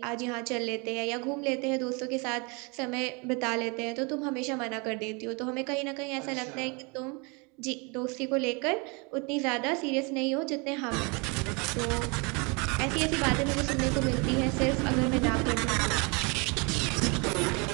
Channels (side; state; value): left; quieter; 30.7 dB